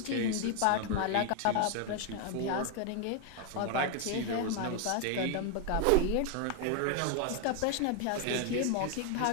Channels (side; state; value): both; different; correlation 0.01